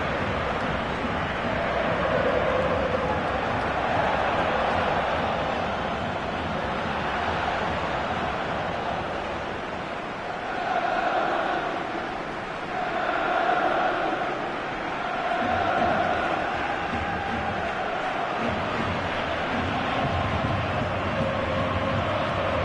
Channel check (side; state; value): both; identical; correlation 1.00